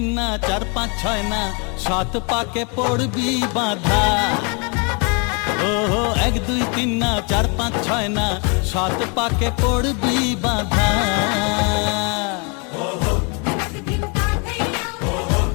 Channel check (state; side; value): quieter; right; 34.6 dB